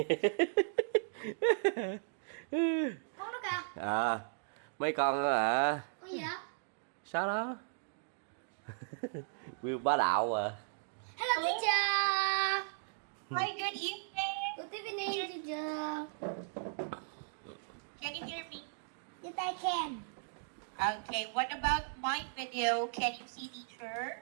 Con nó kìa. À, mấy con đó hả? Con gì vậy? Sao đó? View bá đạo à. Hello teacher. Hi, good evening. Good evening teacher. Can you hear me? Yes I can. Okay, what about my video? Can you see teacher?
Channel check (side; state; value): left; silent; digital silence